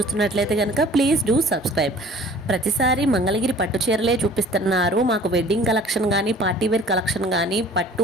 కనుక ప్లీజ్ డూ సబ్స్క్రైబ్. ప్రతిసారి మంగళగిరి పట్టు చీరలే చూపిస్తున్నారు, మాకు వెడ్డింగ్ కలెక్షన్ కానీ పార్టీవేర్ కలెక్షన్ కానీ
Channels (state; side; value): normal; both; correlation 0.49